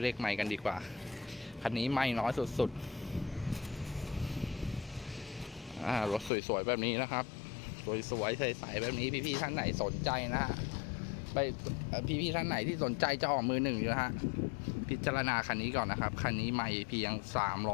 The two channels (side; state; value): right; drops out; at 6.3 s